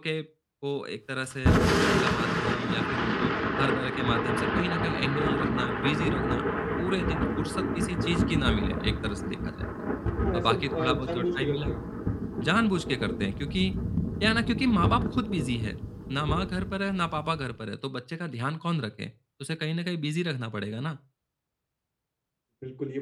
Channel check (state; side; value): identical; both; correlation 1.00